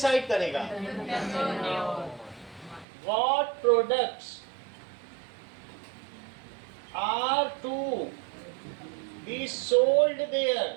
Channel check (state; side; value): drops out; left; at 2.9 s